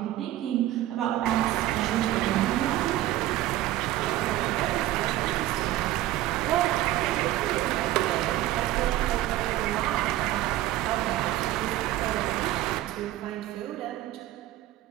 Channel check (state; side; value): quieter; left; 14.7 dB